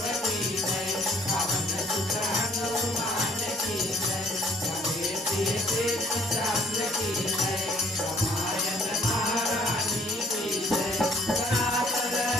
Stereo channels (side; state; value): both; normal; correlation 0.59